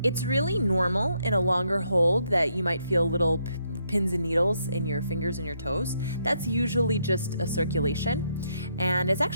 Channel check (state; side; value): inverted; both; correlation -0.76